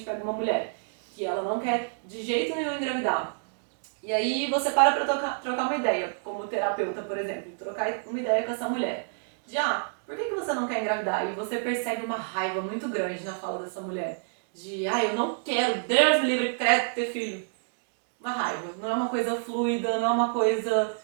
pega uma mulher que ela não quer de jeito nenhum engravidar, e aí você para trocar uma ideia, como terapeuta, por exemplo, trocar uma ideia com essa mulher. De, por que você não quer engravidar? E você percebe uma raiva muito grande na fala dessa mulher. De, eu não quero, Deus me livre, credo ter filho. Uma raiva, não é uma coisa fluida, não é uma coisa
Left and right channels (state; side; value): silent; left; digital silence